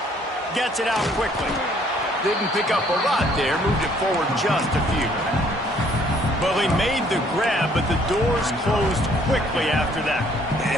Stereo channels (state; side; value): normal; both; correlation 0.62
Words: Gets it out quickly. Didn't pick up a lot there, moved it forward just a few. Well, he made the grab, but the doors closed quickly after that.